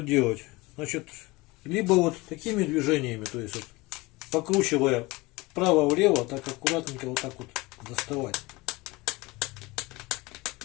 делать? Значит, либо вот такими движениями, то есть вот, покручивая вправо-влево, так аккуратненько вот так вот доставать.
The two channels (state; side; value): quieter; right; 22.7 dB